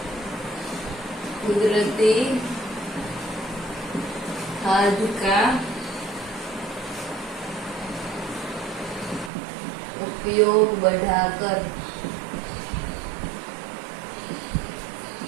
कुदरती खाद का उपयोग बढ़ाकर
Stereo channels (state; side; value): drops out; left; at 9.3 s